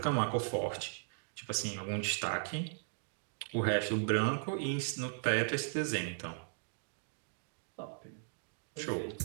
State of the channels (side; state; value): left; silent; digital silence